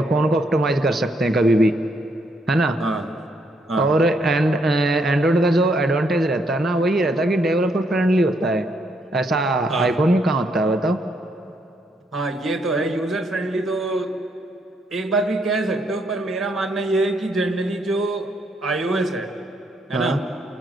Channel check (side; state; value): both; normal; correlation 0.74